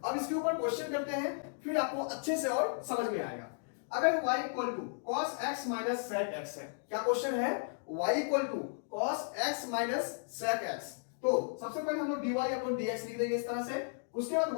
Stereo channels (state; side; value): silent; right; digital silence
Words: अब इसके ऊपर क्वेश्चन करते हैं, फिर आपको अच्छे से और समझ में आएगा। अगर y equal to cos x minus sec x है, क्या क्वेश्चन है? y equal to cos x minus sec x, तो सबसे पहले हम लोग dy अपॉन dx लिख देंगे इस तरह से। उसके बाद